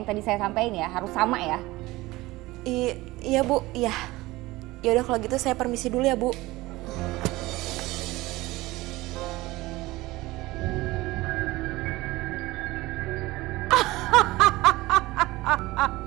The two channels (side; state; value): left; quieter; 19.5 dB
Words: yang tadi saya sampaikan ya, harus sama ya. Iya Bu, iya. Ya udah kalau gitu saya permisi dulu ya Bu.